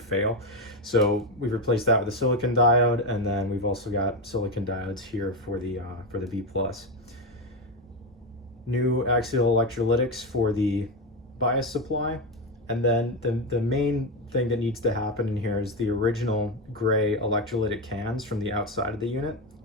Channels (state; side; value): normal; both; correlation 0.11